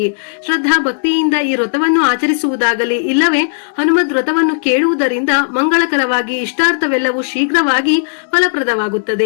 ಶ್ರದ್ಧಾ ಭಕ್ತಿಯಿಂದ ಈ ವ್ರತವನ್ನು ಆಚರಿಸುವುದಾಗಲಿ ಇಲ್ಲವೇ ಹನುಮದ್ ವ್ರತವನ್ನು ಕೇಳುವುದರಿಂದ ಮಂಗಳಕರವಾಗಿ ಇಷ್ಟಾರ್ಥವೆಲ್ಲವೂ ಶೀಘ್ರವಾಗಿ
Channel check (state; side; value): silent; right; digital silence